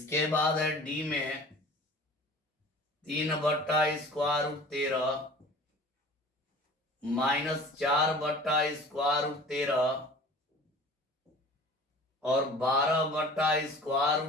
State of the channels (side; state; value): both; normal; correlation 0.44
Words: बाद है डी में 3/√13 -4/√13 और